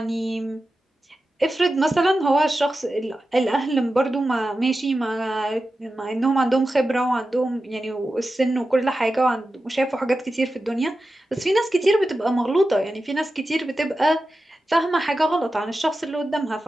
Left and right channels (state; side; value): normal; both; correlation 0.92